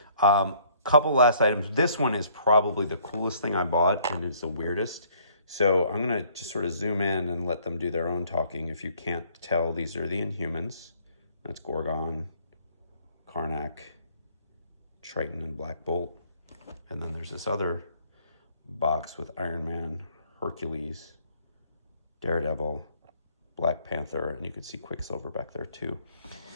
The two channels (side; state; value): both; inverted; correlation -0.62